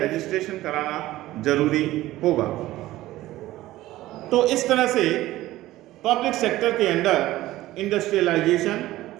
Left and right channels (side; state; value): left; quieter; 16.1 dB